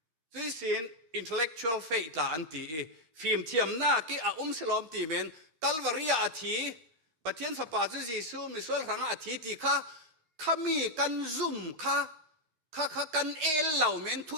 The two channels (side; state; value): left; late; 13 ms